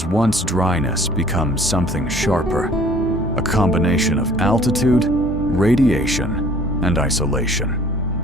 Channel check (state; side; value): normal; both; correlation 0.54